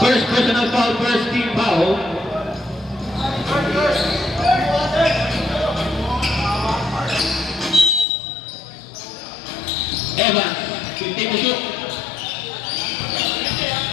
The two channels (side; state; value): right; drops out; at 8.1 s